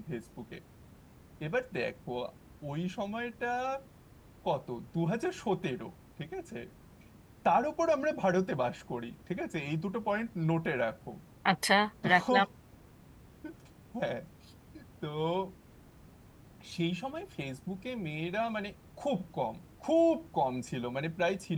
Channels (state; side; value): identical; both; correlation 1.00